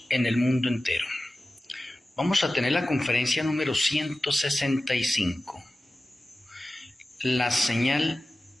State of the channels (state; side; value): normal; both; correlation 0.95